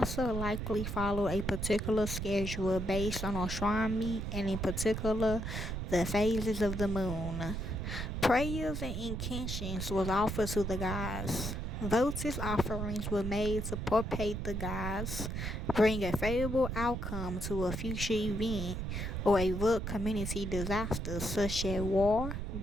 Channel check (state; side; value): noise; right; rumble, 4 dB below the sound